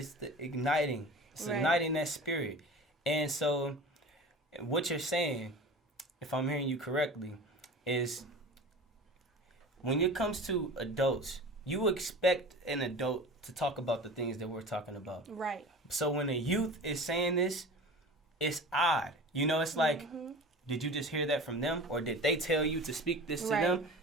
igniting. It's igniting that spirit. And so what you're saying, if I'm hearing you correctly, is when it comes to adults, you expect an adult to talk about the things that we're talking about. Right. So when a youth is saying this, it's odd. It's like, did you just hear that from them? Or did they tell you to speak this to them?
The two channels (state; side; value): normal; both; correlation 0.36